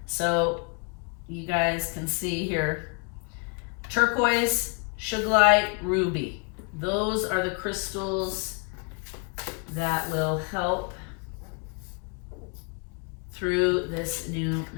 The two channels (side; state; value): right; quieter; 35.0 dB